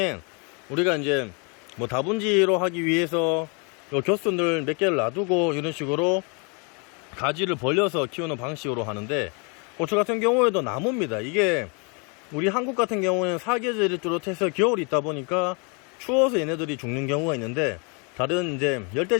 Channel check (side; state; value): right; quieter; 34.2 dB